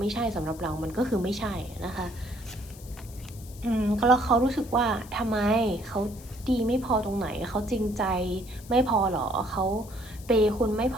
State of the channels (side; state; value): left; noise; hiss, 20 dB below the sound